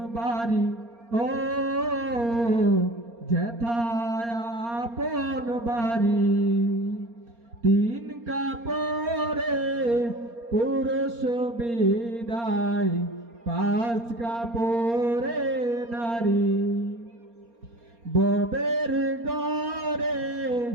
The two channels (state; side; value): late; left; 4.3 ms